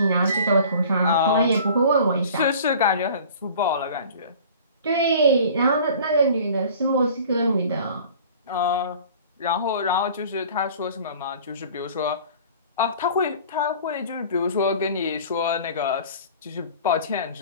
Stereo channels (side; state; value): both; inverted; correlation -0.45